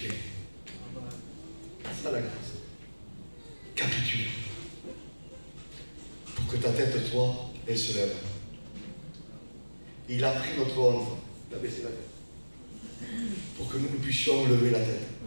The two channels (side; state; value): both; inverted; correlation -1.00